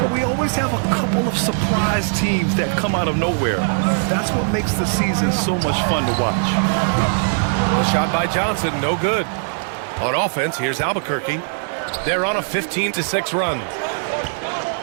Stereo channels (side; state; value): left; silent; digital silence